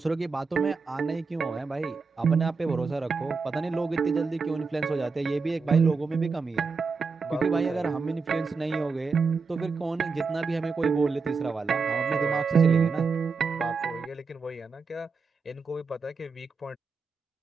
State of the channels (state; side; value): quieter; left; 4.7 dB